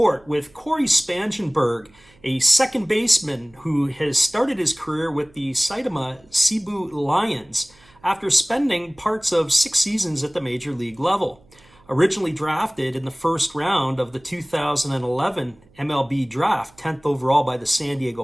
with Corey Spangenberg, a second baseman who has started his career with the Saitama Cebu Lions after spending parts of 6 seasons at the major league level. Originally drafted in the first round of the 2011 MLB draft, 10th overall by the San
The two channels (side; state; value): right; noise; hum, 29 dB below the sound